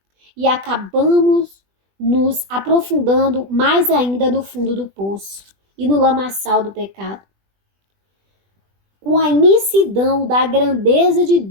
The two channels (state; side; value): late; left; 20 ms